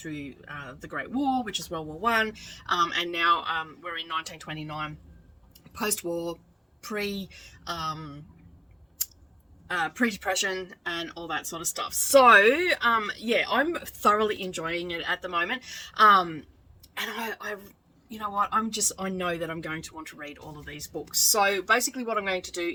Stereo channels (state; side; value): identical; both; correlation 1.00